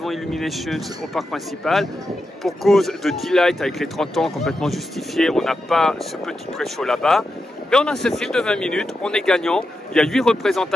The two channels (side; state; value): both; normal; correlation 0.87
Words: Illuminations au parc principal. Pour cause de Delight avec les 30 ans complètement justifiés, on n'a pas ce petit pré-show là-bas. Mais on a ce film de 20 minutes, on est gagnant. Il y a 8